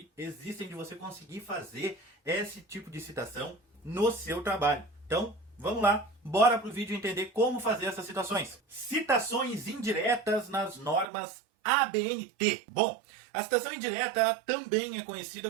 existem de você conseguir fazer esse tipo de citação no seu trabalho. Então, vamos lá, bora pro vídeo entender como fazer essas citações. Citações indiretas nas normas ABNT. Bom, a citação indireta também é conhecida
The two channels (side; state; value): left; drops out; at 11.1 s